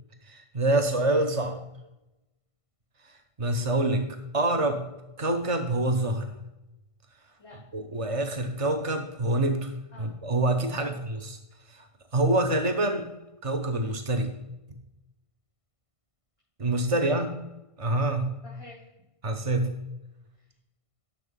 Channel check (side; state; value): left; late; 1.5 ms